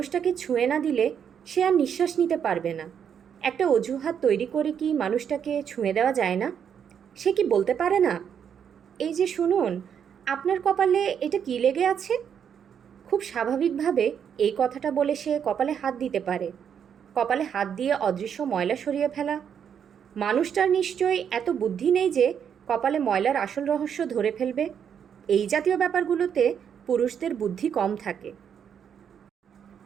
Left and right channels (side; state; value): left; quieter; 8.0 dB